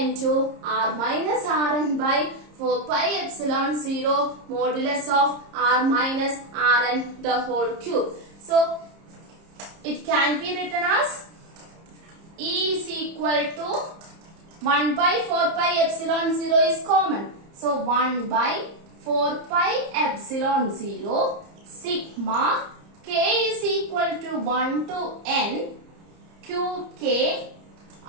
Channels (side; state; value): left; late; 30 ms